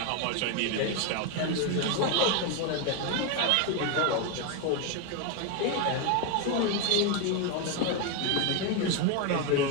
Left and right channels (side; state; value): both; different; correlation 0.02